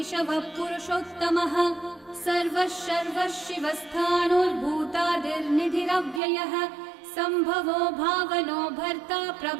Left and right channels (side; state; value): left; drops out; at 6.2 s